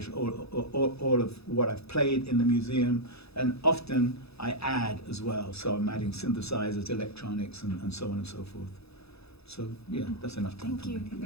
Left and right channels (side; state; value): right; late; 0.79 ms